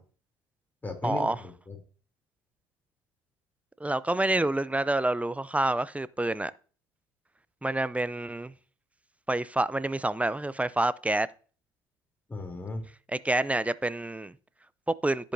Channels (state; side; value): normal; both; correlation 0.87